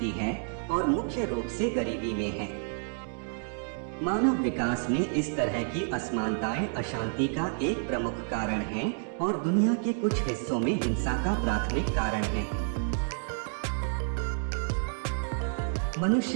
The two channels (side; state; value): left; silent; 58 dB below the other